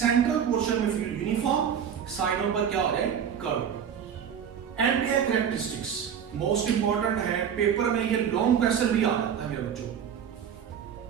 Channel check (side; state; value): left; quieter; 8.1 dB